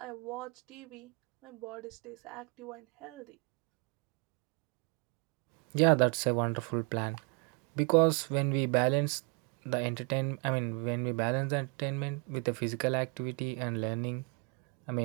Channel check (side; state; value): left; quieter; 33.4 dB